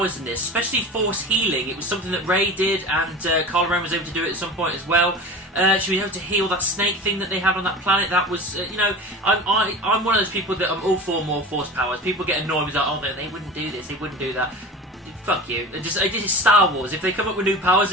in this, especially Force Healing. It was something that Rey did, and Kylo Ren was able to do it at some point as well. She was able to heal that snake thing that they had on that planet. That was, you know, I'm one of those people that I'm all for more Force powers. People get annoyed with like, oh, they wouldn't do this, they wouldn't do that. Fuck you. It's Star Wars. If they come up with new powers,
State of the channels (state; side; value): normal; both; correlation 0.34